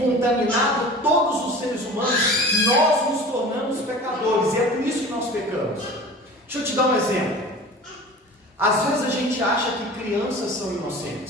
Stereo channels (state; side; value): normal; both; correlation 0.39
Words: todos os seres humanos, nós nos tornamos pecadores. E é por isso que nós pecamos. Deixa eu te dar um exemplo. Às vezes a gente acha que crianças são